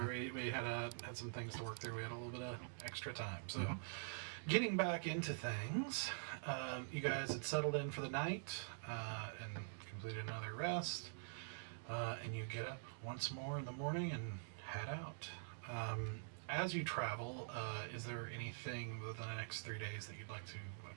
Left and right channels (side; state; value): left; silent; digital silence